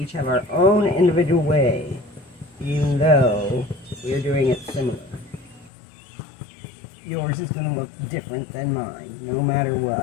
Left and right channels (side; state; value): right; drops out; at 5.7 s